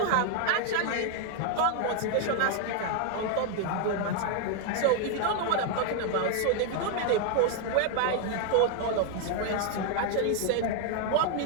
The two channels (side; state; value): both; different; correlation 0.00